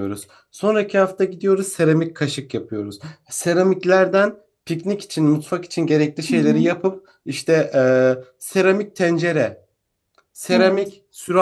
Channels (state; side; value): identical; both; correlation 1.00